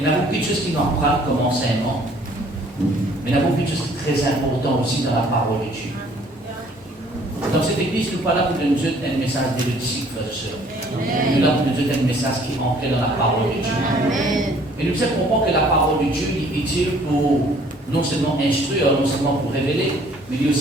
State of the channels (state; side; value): normal; both; correlation 0.58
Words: y a beaucoup de choses qui nous apprennent comme enseignement. Mais il y a beaucoup de choses très importantes aussi dans la parole de Dieu. Dans cette église, nous ne sommes pas là pour nous donner un message d'érudique, frères et sœurs. Nous sommes là pour nous donner un message qui est ancré dans la parole de Dieu. Et nous devons comprendre que la parole de Dieu est utile pour non seulement instruire, non seulement pour révéler, mais il est